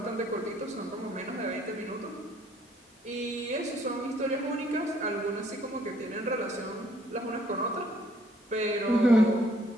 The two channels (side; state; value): both; normal; correlation 0.63